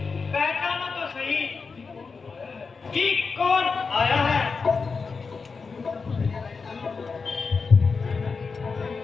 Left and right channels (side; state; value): right; quieter; 4.8 dB